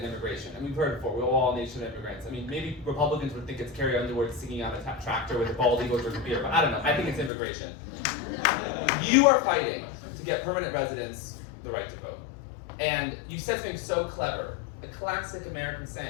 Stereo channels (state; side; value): drops out; right; at 7.3 s